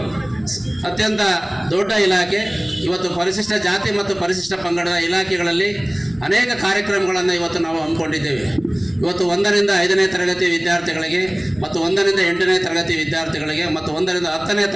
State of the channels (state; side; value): noise; right; rumble, 26 dB below the sound